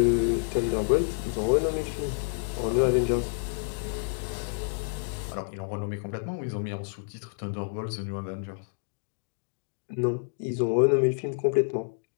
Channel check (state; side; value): silent; right; digital silence